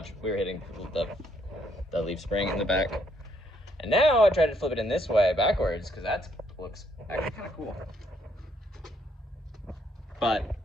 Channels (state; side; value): normal; both; correlation 0.70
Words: We were hitting the leaf spring in the back. And now I tried to flip it in this way backwards, because that looks actually kind of cool. But